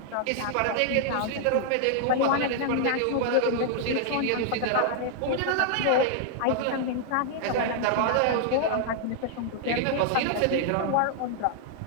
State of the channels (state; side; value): different; both; correlation -0.01